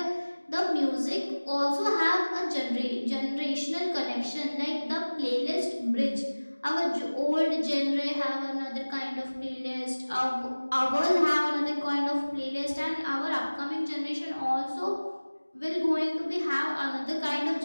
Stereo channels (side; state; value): both; inverted; correlation -1.00